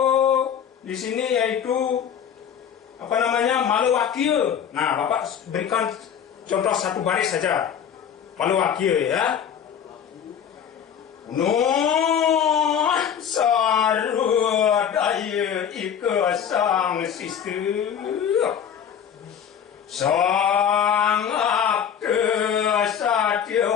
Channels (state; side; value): quieter; right; 8.4 dB